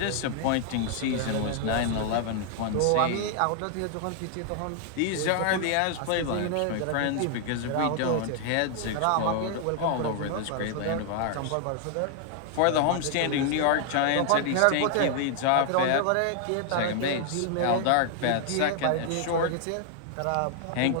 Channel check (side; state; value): both; different; correlation 0.00